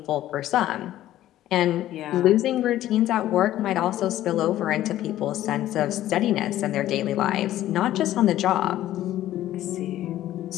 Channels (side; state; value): right; quieter; 13.6 dB